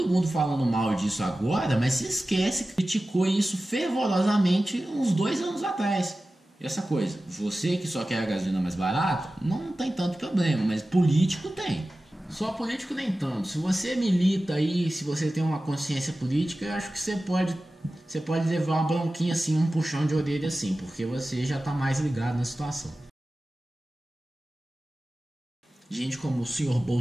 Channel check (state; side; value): normal; both; correlation 0.95